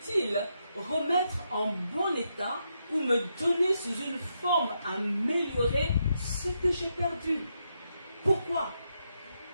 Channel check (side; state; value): both; inverted; correlation -0.81